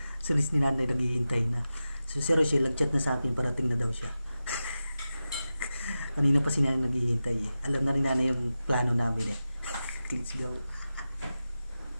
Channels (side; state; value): both; inverted; correlation -0.93